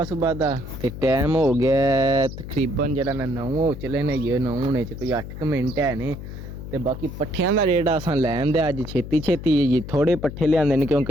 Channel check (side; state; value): left; noise; hum, 10 dB below the sound